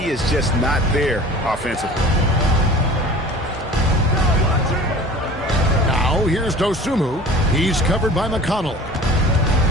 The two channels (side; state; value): both; normal; correlation 0.42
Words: is just not there offensively. Now here's Dosunmu. He's covered by McConnell.